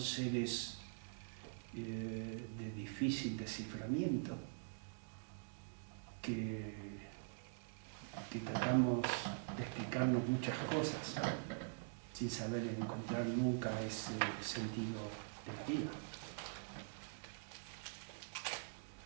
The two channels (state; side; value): silent; left; digital silence